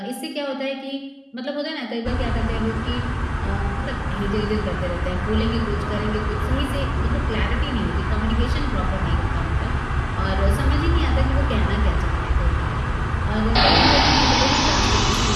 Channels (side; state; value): both; identical; correlation 1.00